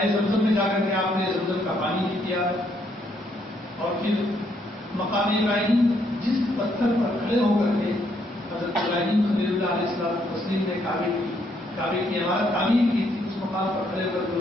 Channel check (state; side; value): normal; both; correlation 0.72